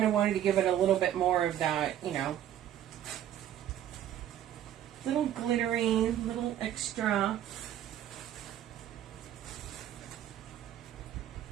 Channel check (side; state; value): left; quieter; 11.4 dB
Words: of wanted to give it a little bit more of that, you know, little glittery, little extra.